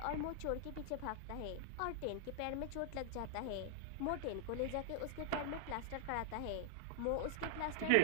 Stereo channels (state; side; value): different; both; correlation -0.01